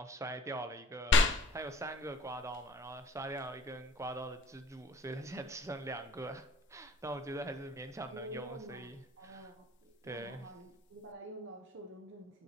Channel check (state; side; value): normal; both; correlation 0.51